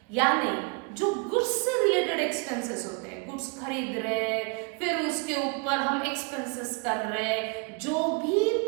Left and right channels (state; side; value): quieter; left; 32.4 dB